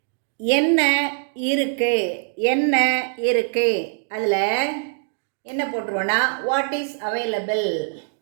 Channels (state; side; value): silent; left; digital silence